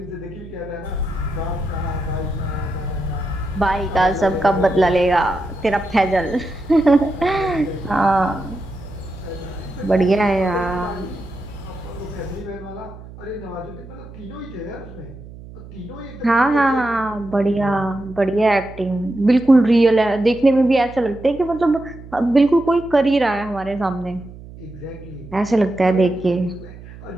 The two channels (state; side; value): noise; right; hum, 16 dB below the sound